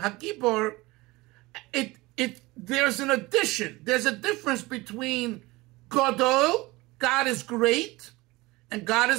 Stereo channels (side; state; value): left; quieter; 21.5 dB